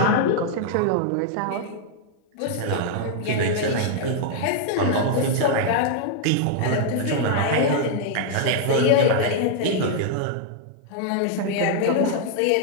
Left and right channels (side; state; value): both; different; correlation -0.01